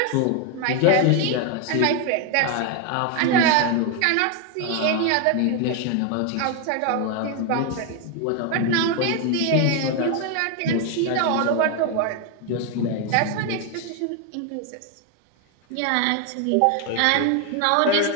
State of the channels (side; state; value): both; different; correlation 0.01